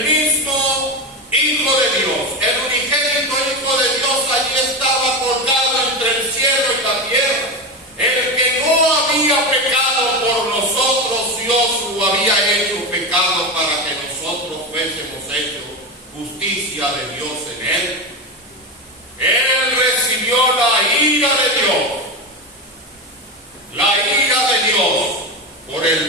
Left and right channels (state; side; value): normal; both; correlation 0.18